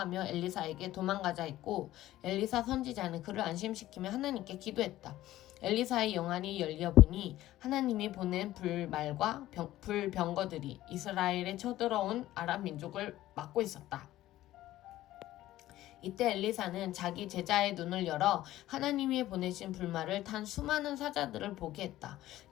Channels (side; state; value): right; quieter; 14.9 dB